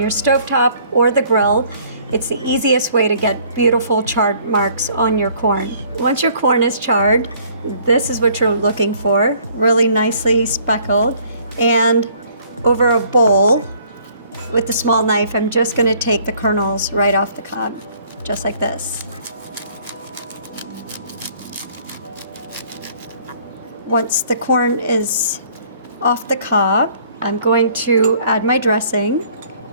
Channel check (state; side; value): inverted; both; correlation -0.58